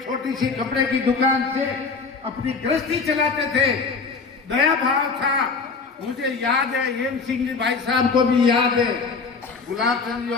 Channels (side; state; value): right; quieter; 4.7 dB